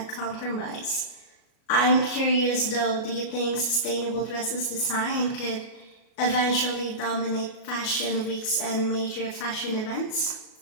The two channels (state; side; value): late; right; 37 ms